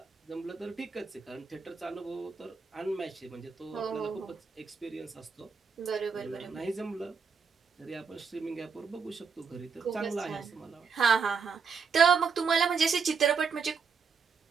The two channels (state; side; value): quieter; left; 5.7 dB